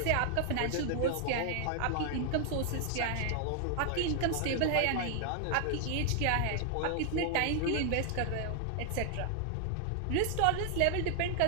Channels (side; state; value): both; different; correlation 0.00